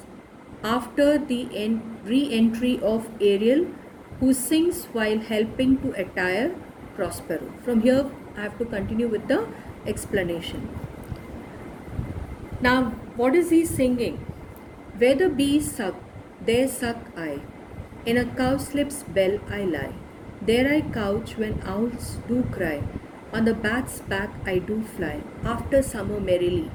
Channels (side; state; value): both; identical; correlation 1.00